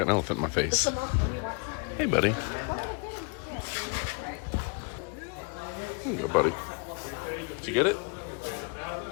an elephant in my face. Hey, buddy. There you go, buddy. Did you get it?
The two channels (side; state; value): right; quieter; 36.2 dB